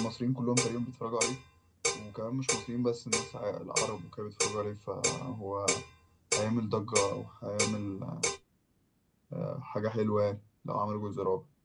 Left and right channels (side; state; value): both; identical; correlation 1.00